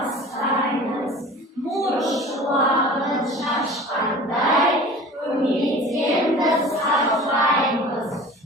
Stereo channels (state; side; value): normal; both; correlation 0.41